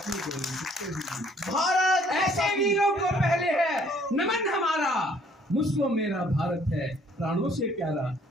गोली खुद को ही ली। भारत ऐसे वीरों को पहले है नमन हमारा, मुझको मेरा भारत है प्राणों से प्यारा,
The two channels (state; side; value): normal; both; correlation 0.61